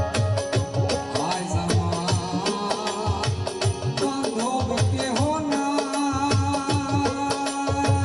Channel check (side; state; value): both; identical; correlation 1.00